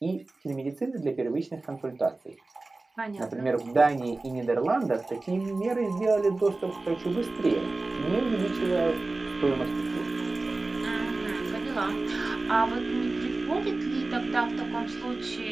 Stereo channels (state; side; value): quieter; left; 3.3 dB